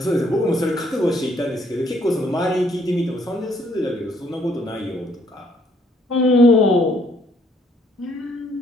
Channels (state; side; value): normal; both; correlation 0.67